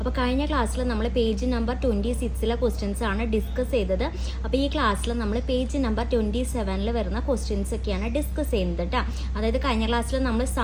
കഴിഞ്ഞ ക്ലാസ്സിൽ നമ്മൾ പേജ് നമ്പർ 26 ക്വസ്റ്റ്യൻസ് ആണ് ഡിസ്കസ് ചെയ്തത്. അപ്പോൾ ഈ ക്ലാസ്സിൽ നമ്മൾ പേജ് നമ്പർ 27 വരുന്ന ക്വസ്റ്റ്യൻസ് ഒക്കെയാണ് ഡിസ്കസ് ചെയ്യുന്നത് കേട്ടോ. അതായത് കഴിഞ്ഞ ക്ലാസ്സിൽ നമ്മൾ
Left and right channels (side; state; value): both; identical; correlation 1.00